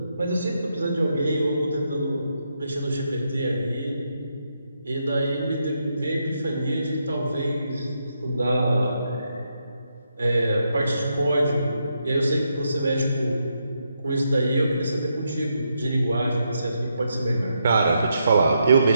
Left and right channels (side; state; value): both; inverted; correlation -0.81